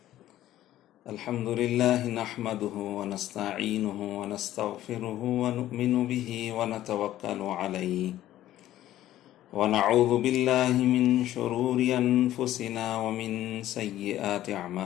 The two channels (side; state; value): right; quieter; 13.6 dB